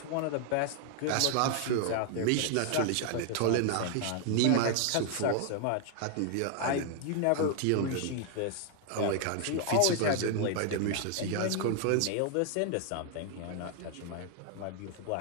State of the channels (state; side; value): different; both; correlation 0.00